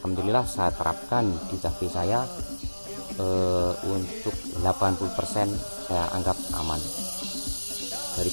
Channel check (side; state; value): both; inverted; correlation -1.00